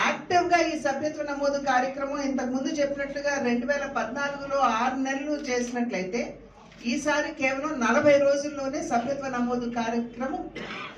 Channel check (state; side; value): identical; both; correlation 1.00